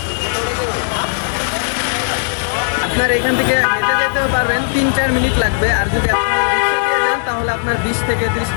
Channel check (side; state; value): right; silent; 69 dB below the other